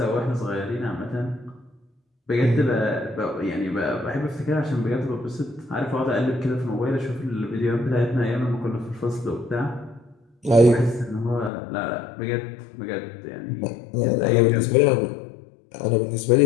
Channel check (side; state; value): right; drops out; at 11.5 s